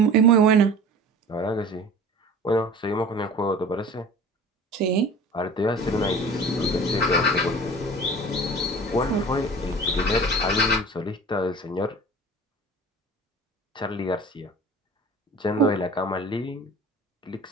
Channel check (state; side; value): normal; both; correlation 0.41